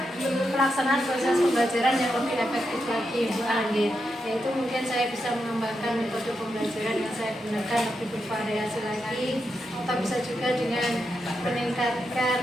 pelaksanaan proses pembelajaran yang lebih efektif lagi Bu Anggit. Yaitu mungkin saya bisa mengembangkan metode pembelajaran yang saya gunakan lebih bervariasi lagi, atau bisa juga dengan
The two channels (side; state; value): both; normal; correlation 0.85